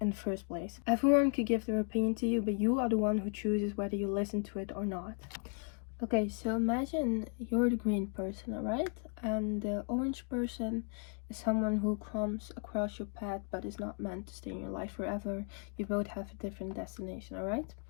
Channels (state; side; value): quieter; right; 39.2 dB